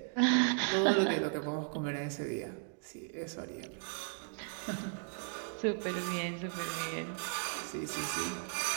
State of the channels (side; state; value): left; silent; 54 dB below the other